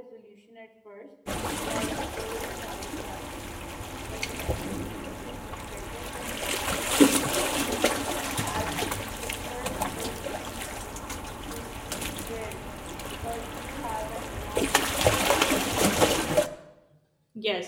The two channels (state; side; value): identical; both; correlation 1.00